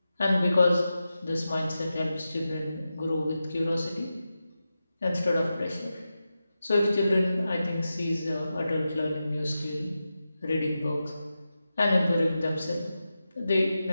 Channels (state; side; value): inverted; both; correlation -0.91